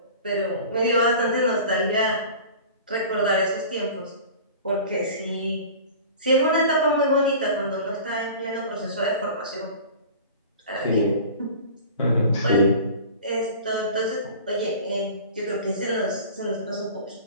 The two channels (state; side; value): inverted; both; correlation -0.40